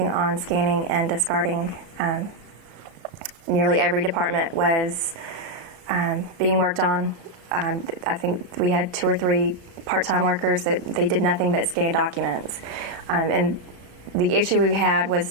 on scanning and discarding. Nearly every department was being worked on. I think we had 2 or 3 part-time workers that they did nothing but scan documents. And the issue we had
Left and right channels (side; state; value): left; late; 34 ms